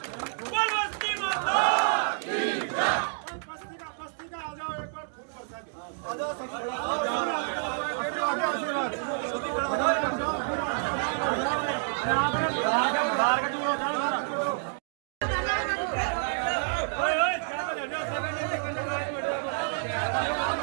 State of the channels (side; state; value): left; silent; digital silence